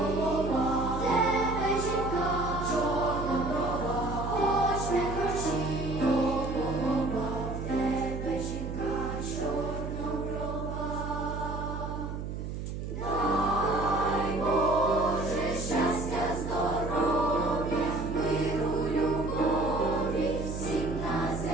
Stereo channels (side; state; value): right; noise; hum, 6 dB below the sound